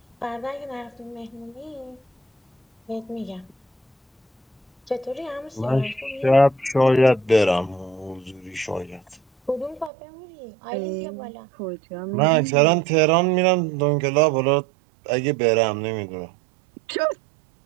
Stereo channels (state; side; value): drops out; left; at 9.9 s